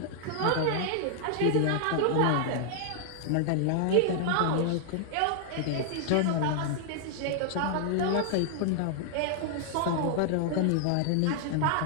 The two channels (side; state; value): both; different; correlation -0.01